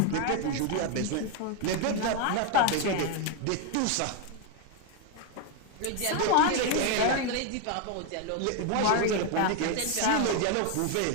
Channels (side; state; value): both; different; correlation 0.01